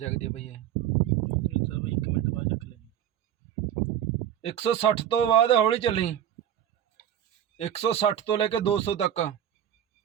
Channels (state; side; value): quieter; left; 10.5 dB